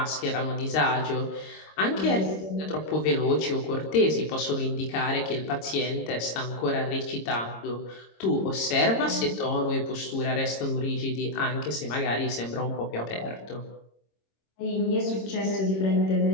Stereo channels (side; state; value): right; late; 26 ms